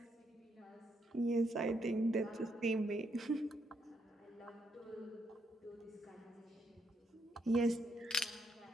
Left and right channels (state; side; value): normal; both; correlation 0.76